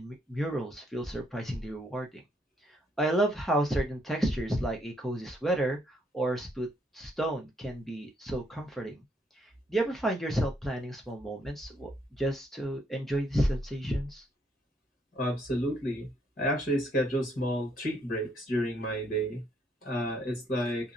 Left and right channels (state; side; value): normal; both; correlation 0.71